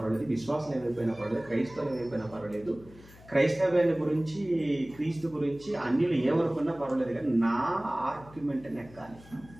విశ్వాసాలు ఏమైపోయినా పర్వాలేదు, క్రైస్తవులు ఏమైపోయినా పర్వాలేదు, క్రైస్తవ్యాన్ని గురించి క్రీస్తు గురించి అన్యులు ఏమనుకున్నా పర్వాలేదు, కానీ నా ఆర్గ్యుమెంట్ నెక్కాలి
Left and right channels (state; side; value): noise; left; hum, 21 dB below the sound